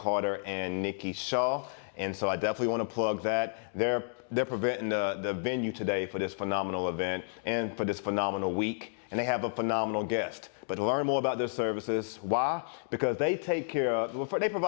and Nikki Shaw. And so I definitely want to plug that. They're presenting the venue today for this phenomenal event and for this phenomenal week. And they have a phenomenal guest. But to learn more about their services, why? Because they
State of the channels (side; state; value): right; silent; digital silence